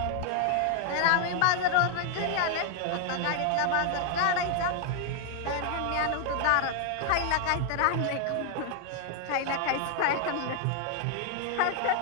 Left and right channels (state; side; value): different; both; correlation 0.00